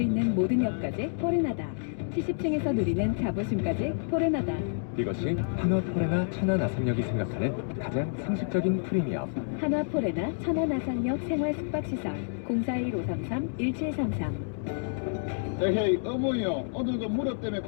있는 모든 역까지 포레나다. 70층에서 누리는 자부심까지 포레나다. 이것이 한화 포레나 천안 아산역이 생각하는 가장 상식적인 프리미엄. 한화 포레나 천안 아산역 생활 숙박시설 041-533-1733. 에헤이 어머니요, 오늘도 무릎 때문에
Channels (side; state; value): right; silent; digital silence